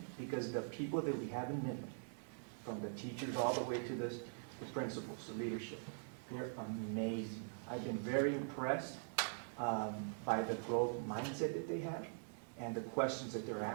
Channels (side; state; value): left; silent; digital silence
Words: because the people that we have in Midland, from the teachers all the way to the principals, the leadership, they're amazing. I've been very impressed by the growth mindset that they have and the questions that they're